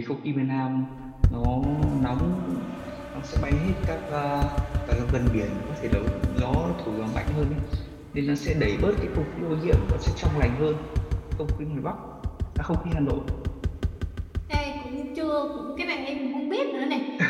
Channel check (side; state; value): both; identical; correlation 1.00